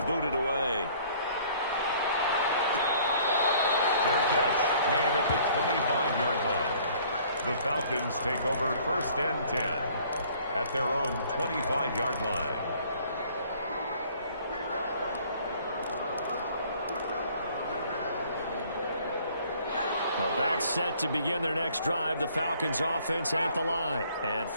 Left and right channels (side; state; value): both; inverted; correlation -0.57